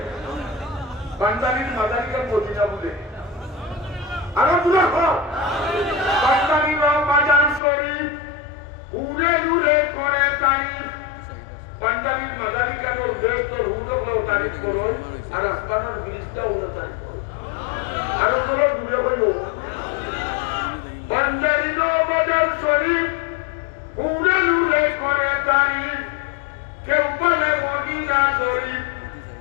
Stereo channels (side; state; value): right; drops out; at 7.6 s